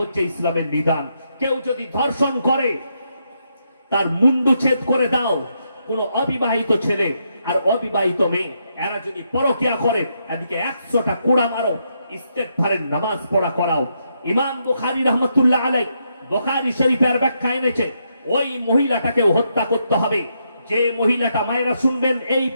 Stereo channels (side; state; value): both; inverted; correlation -0.79